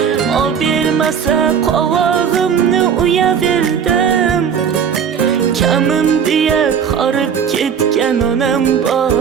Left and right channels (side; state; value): left; quieter; 7.4 dB